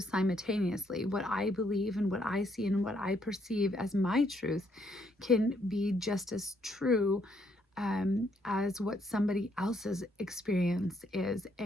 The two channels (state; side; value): normal; both; correlation 0.72